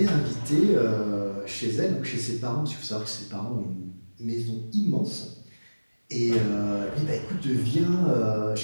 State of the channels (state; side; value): inverted; both; correlation -1.00